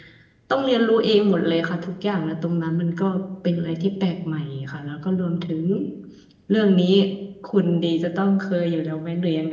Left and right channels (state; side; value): identical; both; correlation 1.00